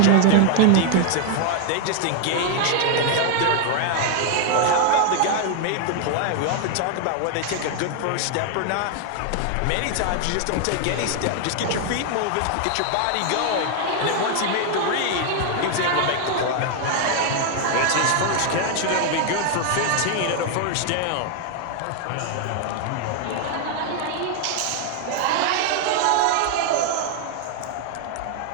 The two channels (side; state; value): both; different; correlation 0.00